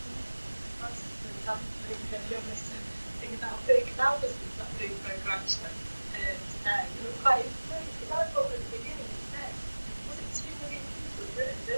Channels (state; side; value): inverted; both; correlation -1.00